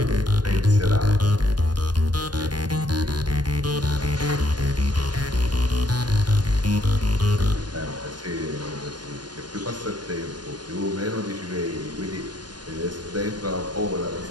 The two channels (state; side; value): late; left; 0.70 ms